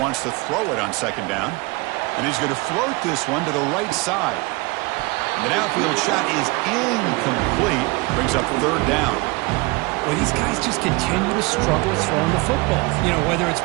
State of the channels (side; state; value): left; quieter; 25.4 dB